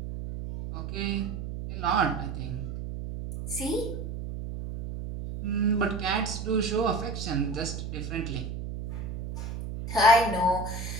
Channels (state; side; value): noise; right; hum, 6 dB below the sound